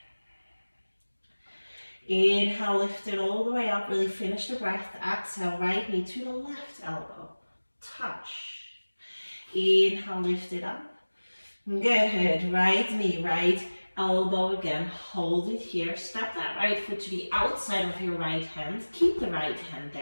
Inhale, lift it all the way up, really finish the breath. Exhale, right knee to the left elbow. Touch. Inhale, lift it up. Good, right knee, right elbow again, hold it here, step that right foot to the outside of your right hand, keep the right hand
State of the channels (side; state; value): both; inverted; correlation -1.00